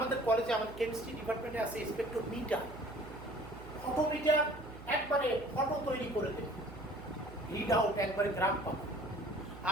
কলেজে, আমাদের কেমিস্ট্রি ডিপার্টমেন্টে আছে স্পেকট্রোমিটার। ফটোমিটার একবারে ফটো তৈরি করে দেবে, রিড আউট একবারে গ্রাফ পাবে।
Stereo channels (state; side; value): noise; right; hum, 15 dB below the sound